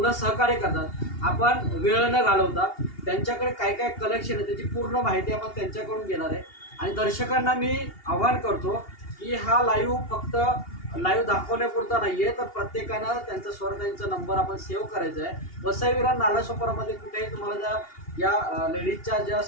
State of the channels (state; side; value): late; right; 2.8 ms